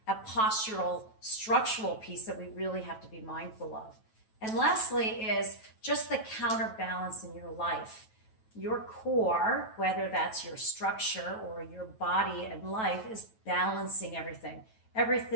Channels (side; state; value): right; late; 9.2 ms